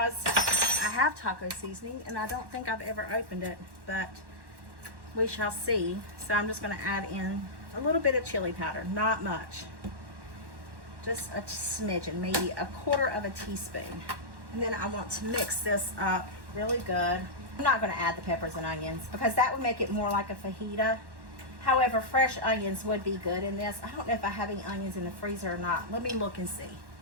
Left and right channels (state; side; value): late; left; 1.1 ms